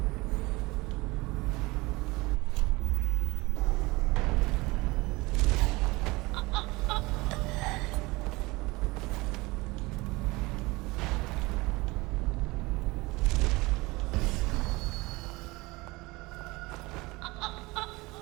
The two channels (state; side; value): quieter; left; 22.7 dB